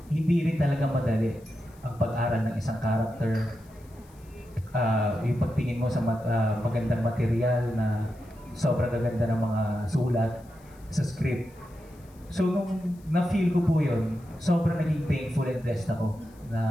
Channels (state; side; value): noise; left; hiss, 29 dB below the sound